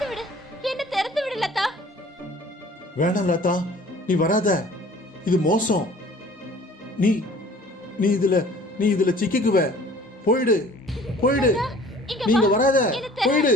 விடு, என்ன திறந்து விடு லதா. வேணாம் லதா, நீ வராத, இது மோசம். நீ நீ இதுல சிக்கிக்குவ. போயிடு போயிடு, நீங்க வராத, போயிடு.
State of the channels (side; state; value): both; normal; correlation 0.50